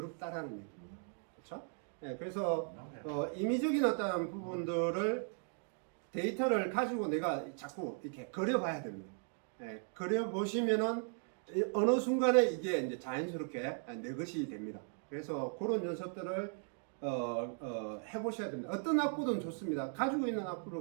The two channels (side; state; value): left; silent; 53 dB below the other